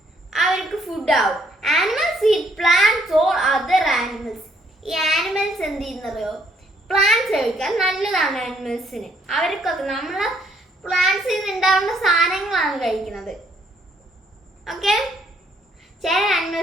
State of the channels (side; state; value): both; normal; correlation 0.67